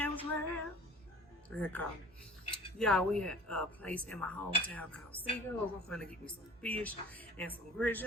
World. Y'all, we at a place in my hometown called Seagulls. I'm finna get me some fish and some grits.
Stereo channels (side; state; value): both; normal; correlation 0.45